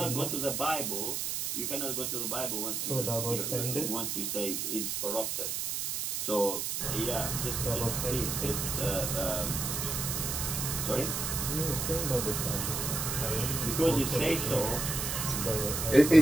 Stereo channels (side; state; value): right; noise; hiss, 1 dB below the sound